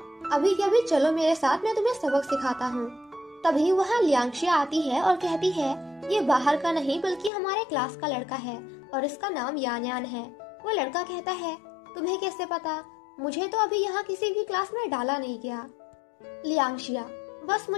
अभी के अभी चलो मेरे साथ, मैं तुम्हें सबक सिखाता हूँ। तभी वहाँ लियांगशिया आती है और कहती है, ये बाहर का नहीं बल्कि हमारे क्लास का लड़का है और इसका नाम यान यान है। वो लड़का कहता है, तुम्हें कैसे पता? मुझे तो अभी यहाँ किसी भी क्लास में डाला नहीं गया। लियांगशिया, बस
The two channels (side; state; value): right; drops out; at 7.3 s